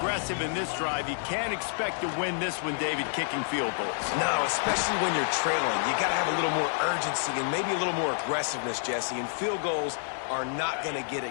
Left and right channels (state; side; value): silent; right; digital silence